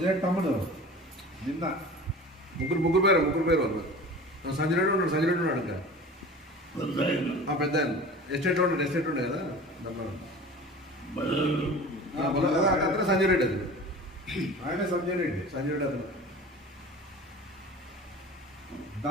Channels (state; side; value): normal; both; correlation 0.38